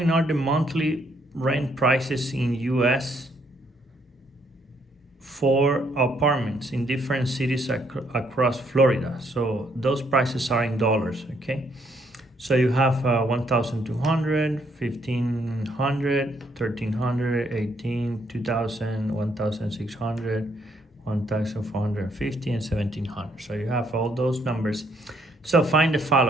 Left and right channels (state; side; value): normal; both; correlation 0.71